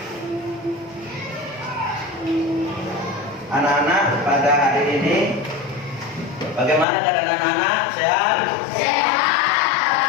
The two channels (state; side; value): drops out; right; at 6.9 s